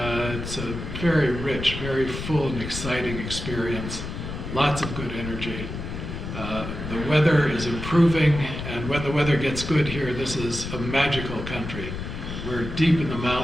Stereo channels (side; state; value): left; noise; rumble, 7 dB below the sound